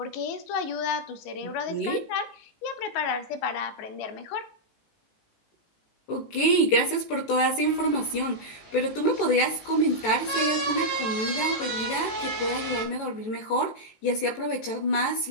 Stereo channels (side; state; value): right; late; 18 ms